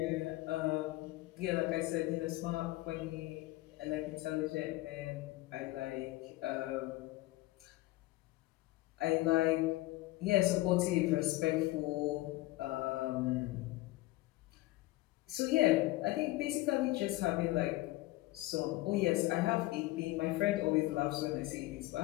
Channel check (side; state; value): right; quieter; 18.6 dB